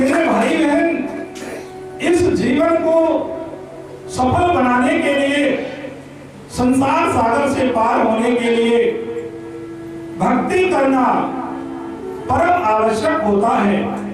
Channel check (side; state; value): both; identical; correlation 1.00